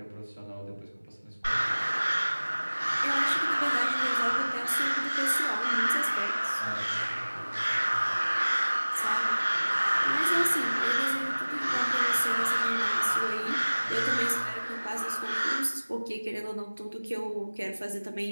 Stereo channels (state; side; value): inverted; both; correlation -1.00